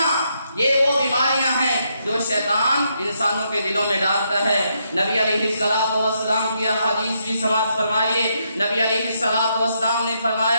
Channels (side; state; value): both; inverted; correlation -0.77